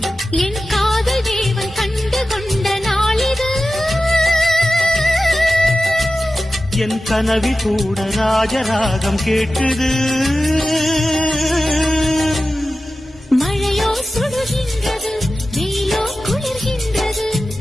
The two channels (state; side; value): normal; both; correlation 0.94